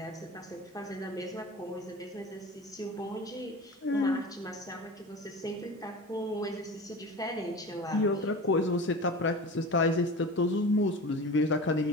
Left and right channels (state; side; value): normal; both; correlation 0.33